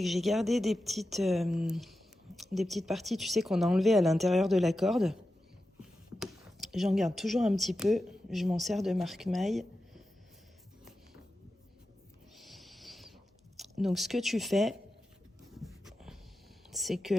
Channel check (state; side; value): normal; both; correlation 0.91